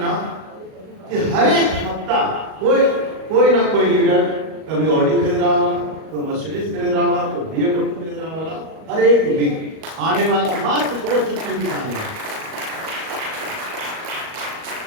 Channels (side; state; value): left; late; 38 ms